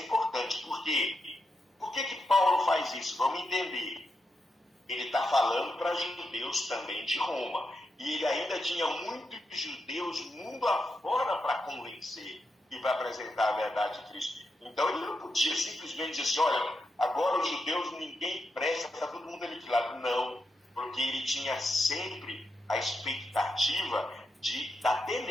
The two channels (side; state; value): both; normal; correlation 0.86